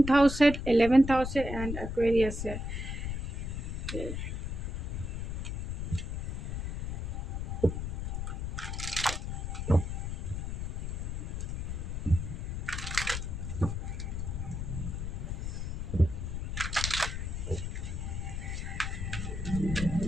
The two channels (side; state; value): left; noise; rumble, 4 dB below the sound